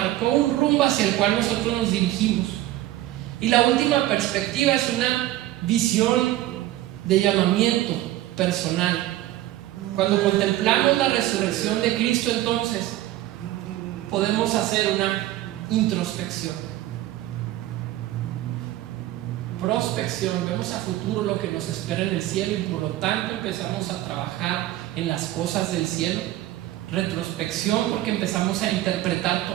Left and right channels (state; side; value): quieter; left; 15.0 dB